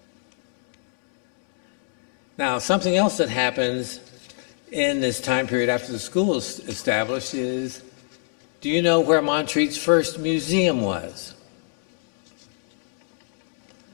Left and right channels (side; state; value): right; silent; digital silence